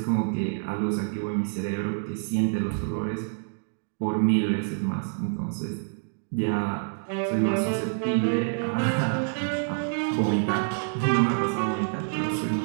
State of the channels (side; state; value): left; silent; digital silence